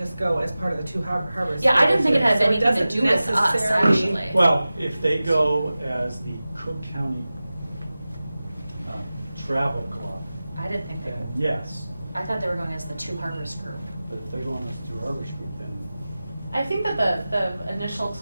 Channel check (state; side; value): inverted; both; correlation -0.96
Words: go as part of the two harbors? Yeah, I didn't think it had So anything to doesn't do with us, necessarily- actually. Well, if they go as the Cook County Travel Club, I didn't think then that. yes. I thought they were going as the Two Harbors group. But if they're going as Two Harbors Group, then I think that the initial